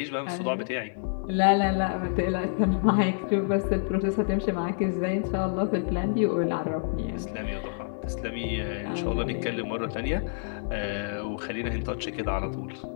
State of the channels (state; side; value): silent; right; digital silence